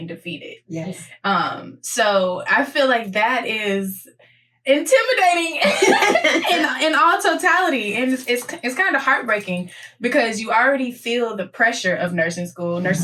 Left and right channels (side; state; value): both; identical; correlation 1.00